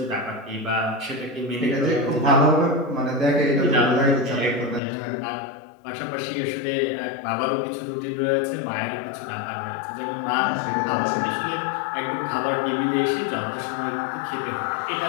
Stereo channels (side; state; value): right; drops out; at 4.8 s